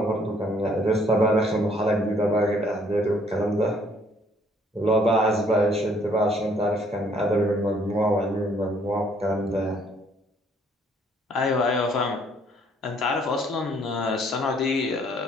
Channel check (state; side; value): normal; both; correlation 0.63